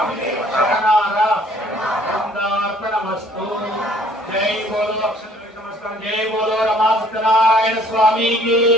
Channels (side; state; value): both; normal; correlation 0.58